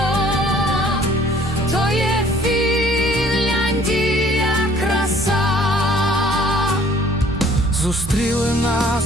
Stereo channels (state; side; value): normal; both; correlation 0.57